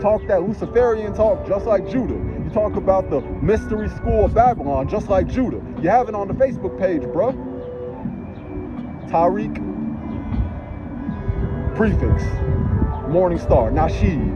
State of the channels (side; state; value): both; identical; correlation 1.00